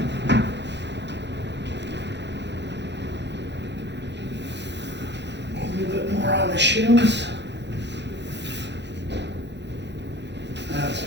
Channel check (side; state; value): left; late; 0.51 ms